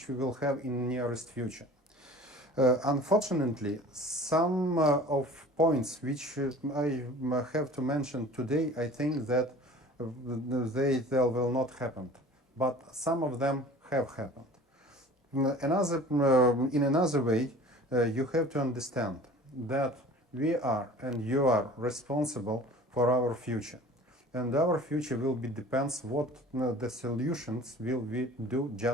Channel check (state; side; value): normal; both; correlation 0.44